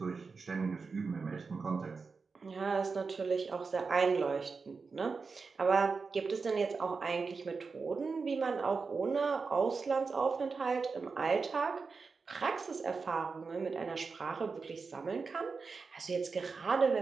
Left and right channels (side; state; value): left; quieter; 4.7 dB